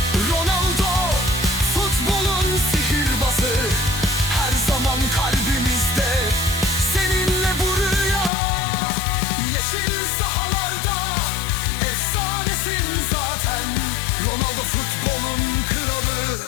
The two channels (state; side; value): drops out; right; at 8.3 s